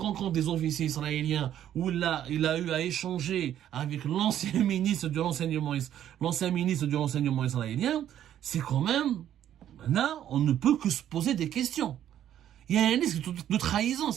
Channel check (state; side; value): quieter; left; 11.0 dB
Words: des officiers israéliens, ou là il a eu à échanger avec l'ancien ministre de l'enseignement israélien, c'est quand même, là, on ne peut que se poser des questions. Il y a un risque de trahison,